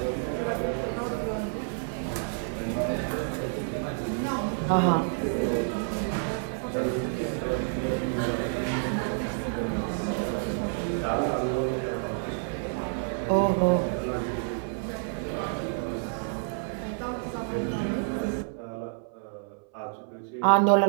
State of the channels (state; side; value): silent; left; 59 dB below the other